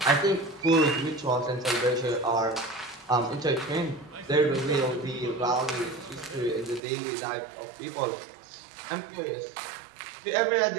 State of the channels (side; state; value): left; drops out; at 6.8 s